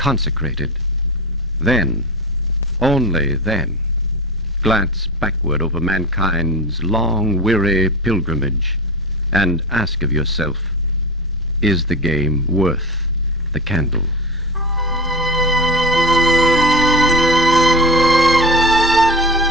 then, only then, glance backward over mankind's long, weary pilgrimage and ask of yourself, is the game worth the candle?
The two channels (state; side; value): normal; both; correlation 0.26